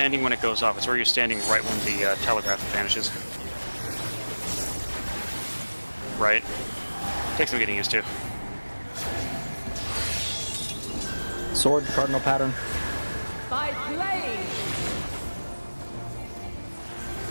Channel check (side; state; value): both; inverted; correlation -1.00